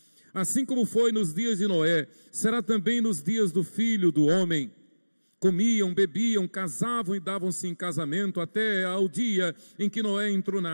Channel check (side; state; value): both; inverted; correlation -1.00